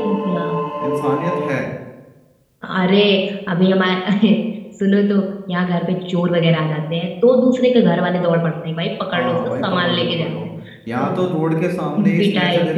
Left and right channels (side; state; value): both; identical; correlation 1.00